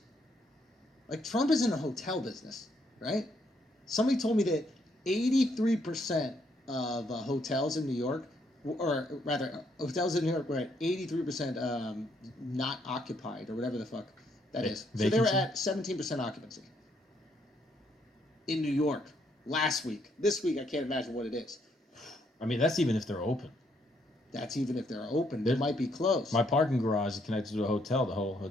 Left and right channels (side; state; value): both; normal; correlation 0.72